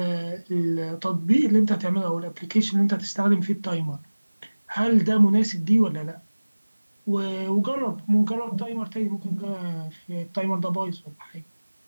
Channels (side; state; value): both; inverted; correlation -1.00